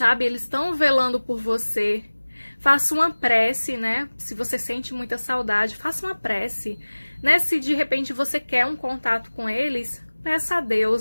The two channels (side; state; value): both; inverted; correlation -1.00